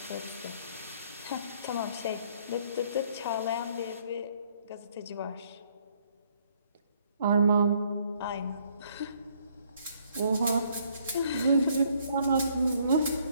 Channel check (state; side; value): inverted; both; correlation -0.66